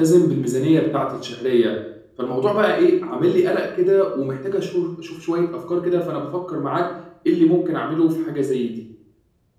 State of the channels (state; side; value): identical; both; correlation 1.00